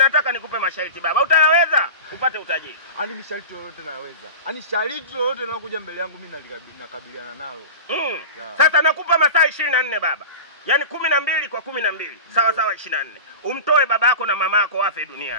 nikupe masharti baba. Utayaweza upate utajiri? Ani masharti yote naweza. Ani sharti yote linalokuja mbele yangu mimi nakabiliana nalo. Sasa nakupa masaa 24 baba. Yaani 12 kwa 12. Sawa 24. Umtoe baba yako na mama yako wafe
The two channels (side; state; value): both; inverted; correlation -0.31